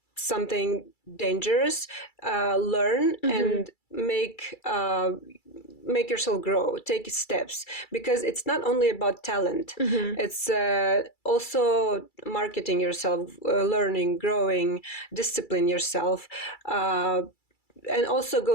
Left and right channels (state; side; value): late; right; 2.3 ms